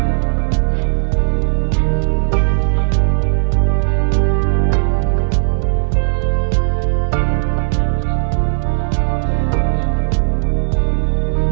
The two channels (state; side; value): silent; left; digital silence